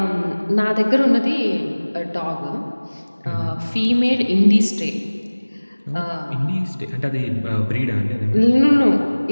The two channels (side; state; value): both; inverted; correlation -1.00